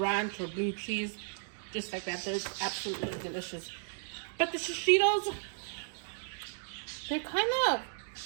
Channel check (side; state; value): left; silent; digital silence